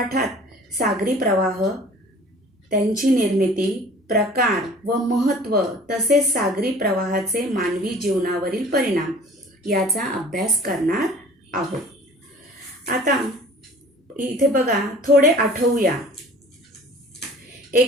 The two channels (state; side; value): normal; both; correlation 0.47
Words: सागरी प्रवाह, त्यांची निर्मिती, प्रकार व महत्त्व तसेच सागरी प्रवाहाचे मानवी जीवनावरील परिणाम याचा अभ्यास करणार आहोत. आता इथे बघा, थोडे आठवूया.